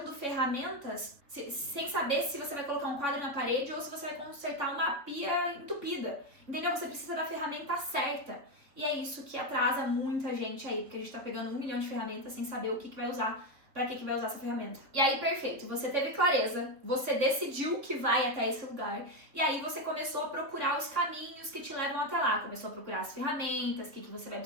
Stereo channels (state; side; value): late; left; 3.3 ms